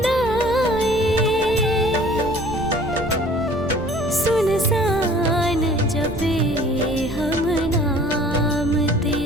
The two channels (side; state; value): right; noise; rumble, 12 dB below the sound